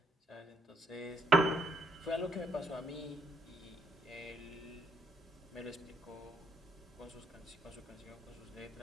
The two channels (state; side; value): normal; both; correlation 0.71